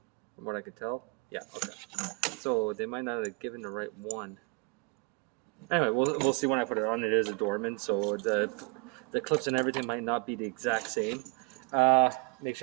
From what I can tell. Yeah, okay. So they might not have given the right one. Anyway, we'll see when I put it on. It is a Dorman, so the clips and everything might not be the exact same. Make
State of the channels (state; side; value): quieter; left; 28.0 dB